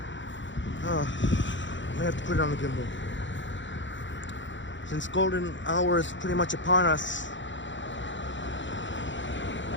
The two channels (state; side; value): late; right; 0.54 ms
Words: I may have to put it on the gimbal. Since golden hour is pretty much upon us.